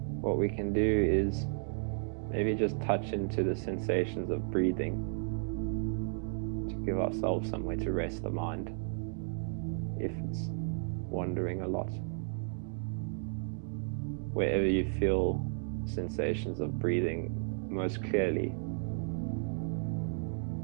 What we can do is maybe just touch into the sensations of breathing to give ourselves somewhere to rest the mind if it's wandering a lot. Wherever you feel sensations of breathing most clearly,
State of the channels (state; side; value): silent; left; 55 dB below the other